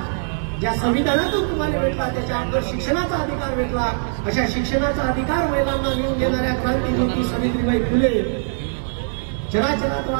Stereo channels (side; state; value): left; silent; digital silence